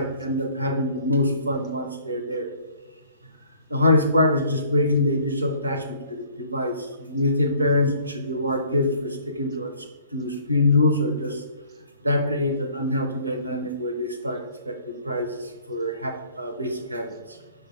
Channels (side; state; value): both; inverted; correlation -0.56